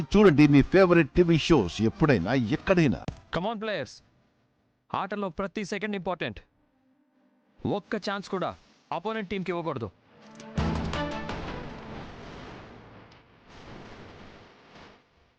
చూడండి మీ ఫేవరెట్ టీవీ షోస్ ఎప్పుడైనా ఎక్కడైనా. కమాన్ ప్లేయర్స్, ఆటలో ప్రతి సెకండ్ ఇంపార్టెంట్. ఒక్క ఛాన్స్ కూడా అపోనెంట్ టీంకి ఇవ్వకూడదు.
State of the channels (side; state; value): both; identical; correlation 1.00